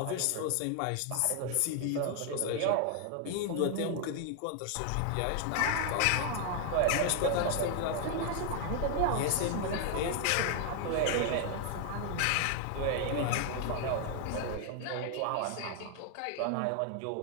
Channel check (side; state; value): both; different; correlation 0.00